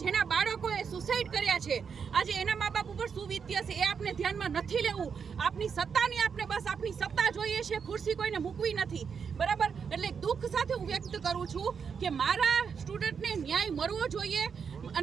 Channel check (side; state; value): left; quieter; 6.4 dB